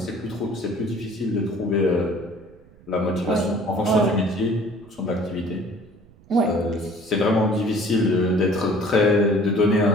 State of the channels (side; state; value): right; noise; rumble, 26 dB below the sound